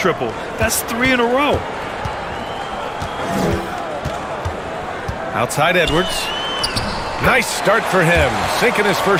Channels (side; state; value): both; identical; correlation 1.00